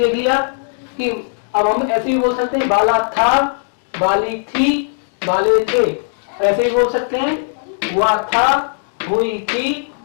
लिया कि अब हम ऐसे भी बोल सकते हैं, बाला था, बाली थी, बाले थे। ऐसे भी बोल सकते हैं, हुआ था, हुई थी,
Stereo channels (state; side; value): silent; right; digital silence